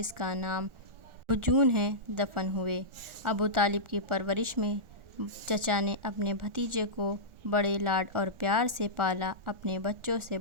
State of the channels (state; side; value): late; left; 1.4 ms